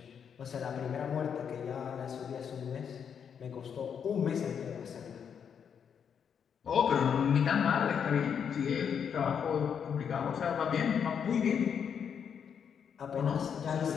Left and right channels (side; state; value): right; quieter; 7.5 dB